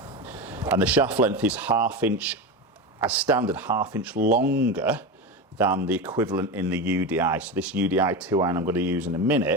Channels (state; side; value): normal; both; correlation 0.21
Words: And the shaft length is ½ as standard, ½ inch longer than the equivalent in the UDI. So this UDI 2 iron I'm going to use in a